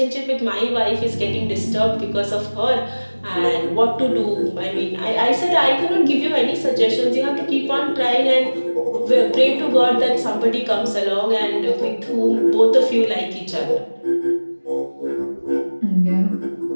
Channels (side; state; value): both; inverted; correlation -1.00